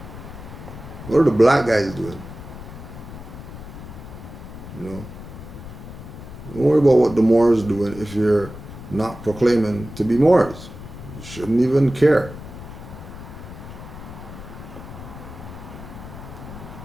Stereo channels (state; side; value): noise; left; rumble, 13 dB below the sound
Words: What are the black guys doing? You know? Don't worry about what the Moors doing if you're not proclaiming to be Moors. You shouldn't even care.